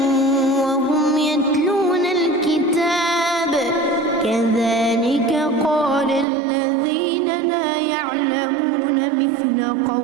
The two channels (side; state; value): left; drops out; at 6.2 s